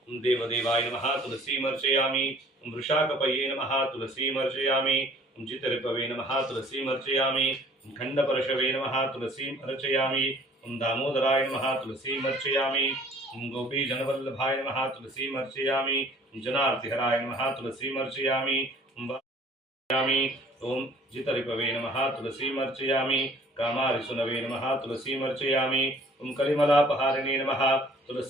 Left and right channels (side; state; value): both; normal; correlation 0.53